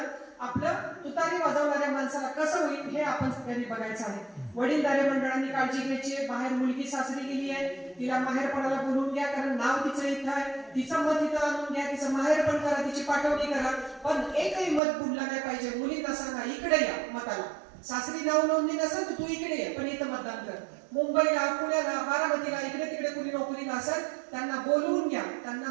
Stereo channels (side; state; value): left; drops out; at 14.8 s